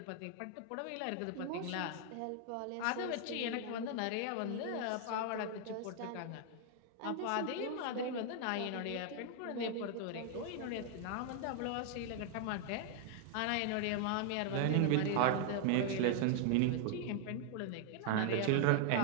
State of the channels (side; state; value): both; different; correlation 0.00